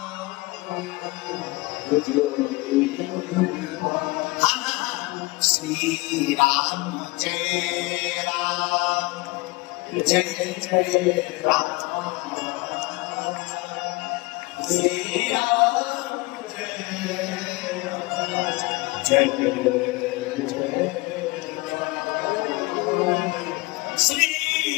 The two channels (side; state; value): right; quieter; 23.3 dB